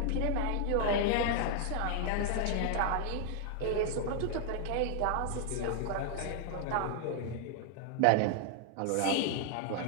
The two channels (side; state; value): both; different; correlation 0.00